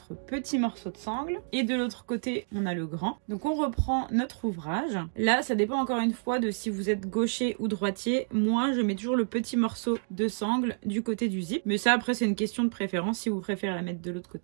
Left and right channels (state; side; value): silent; left; digital silence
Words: petit morceau de sangle et de l'autre côté, on a le grand. Donc on reprend notre ouvrage. Là, ça dépend encore une fois de si vous êtes gaucher ou droitier. Moi, je mets toujours le petit morceau de sangle du côté du zip. Mais ça, après, c'est une question de préférence. Si vous préférez la mettre de l'autre